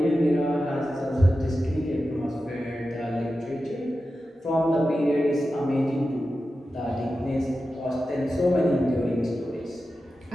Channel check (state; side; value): normal; both; correlation 0.92